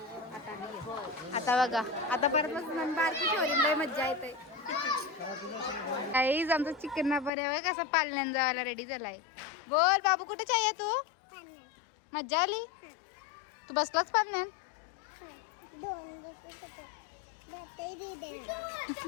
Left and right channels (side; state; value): right; drops out; at 7.3 s